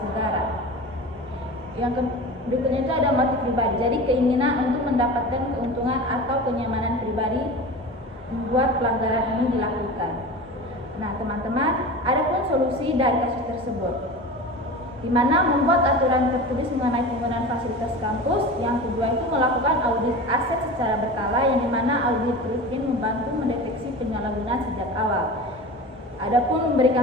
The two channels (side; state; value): both; normal; correlation 0.32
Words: negara. Yang berikutnya itu ada motif pribadi. Jadi keinginan untuk mendapatkan keuntungan atau kenyamanan pribadi membuat pelanggaran ini dilakukan. Nah, teman-teman, ada pun solusi dari kasus tersebut, di mana membuat aturan tertulis mengenai penggunaan fasilitas kampus. Yang kedua itu melakukan audit aset secara berkala, yang dimana audit rutin membantu mendeteksi penyalahgunaan sejak awal. Adapun